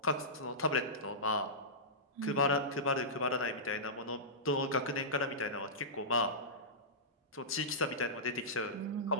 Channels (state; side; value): normal; both; correlation -0.17